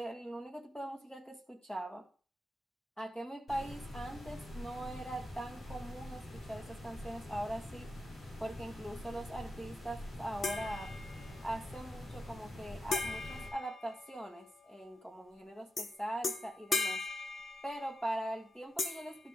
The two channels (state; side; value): normal; both; correlation 0.88